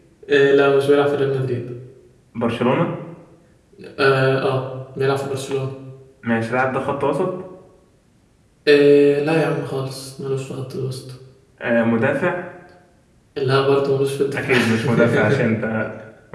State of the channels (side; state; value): both; identical; correlation 1.00